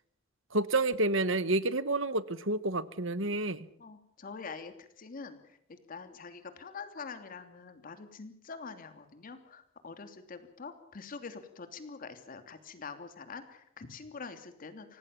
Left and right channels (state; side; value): normal; both; correlation -0.14